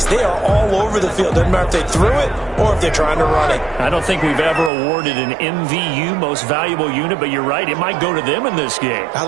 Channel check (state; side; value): drops out; left; at 4.7 s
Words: They are all over the field. Doesn't matter if they threw it or if they're trying to run it. I don't think we've ever awarded an MVU, most valuable unit, but you're right, it might go to them in this game. I